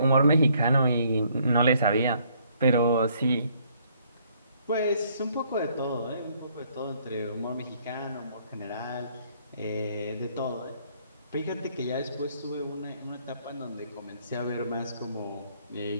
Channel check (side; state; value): both; inverted; correlation -0.65